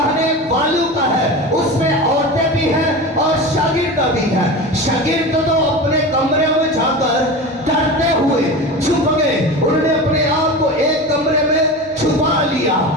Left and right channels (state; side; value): normal; both; correlation 0.28